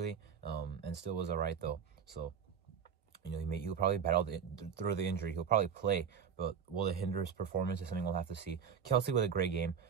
and still was alright though. So he'll probably battle through the injury. He'll probably play, but will it hinder his performance is something we'll have to see. Kelsey with a great game.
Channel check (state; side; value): quieter; left; 7.2 dB